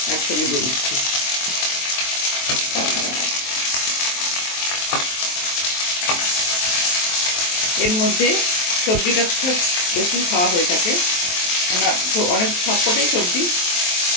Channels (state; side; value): late; right; 23 ms